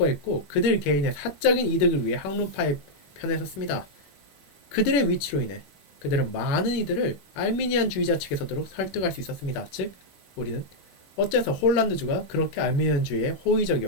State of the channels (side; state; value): right; late; 21 ms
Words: 그들 개인의 사적인 이득을 위해 학론파의 편에 섰습니다. 그들의 위치로 인해 그들은 많은 이들을 알미니안주의자 측에 서도록 설득할 수 있었습니다. 즉, 우리는 어째서 홀란드주가 그렇게 알미니안주의에